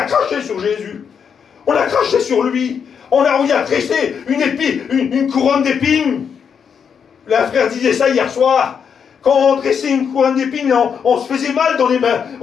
craché sur Jésus. On a craché sur lui. On y a tressé une couronne d'épines. Le frère disait ça hier soir. Quand on tressait une couronne d'épines, on se faisait mal dans les mains.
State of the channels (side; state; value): right; quieter; 7.0 dB